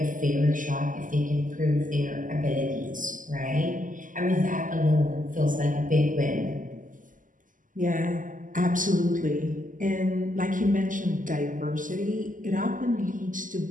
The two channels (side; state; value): left; late; 0.38 ms